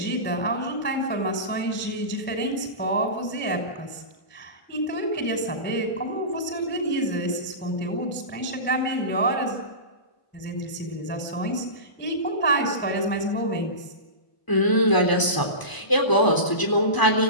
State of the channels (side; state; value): right; late; 1.0 ms